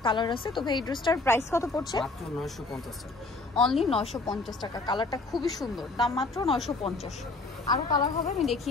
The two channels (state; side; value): quieter; right; 3.4 dB